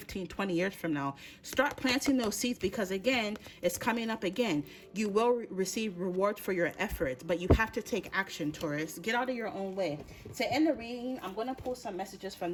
20 years from now? Start planting those seeds, because again, it's coming up again. You will receive rewards for your efforts, but you have to take action, Taurus. Get out of your own way. To end the reading, I'm going to pull some messages from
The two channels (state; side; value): identical; both; correlation 1.00